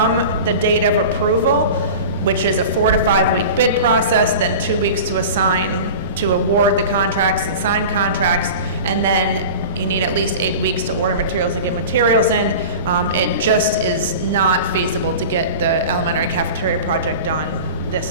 the date of approval, which is a 4 to 5 week bid process, then 2 weeks to award the contracts and sign contracts, and then you need at least 8 weeks to order materials and get materials in. It just is not feasible to get the elementary cafeteria project done this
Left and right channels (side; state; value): both; inverted; correlation -0.34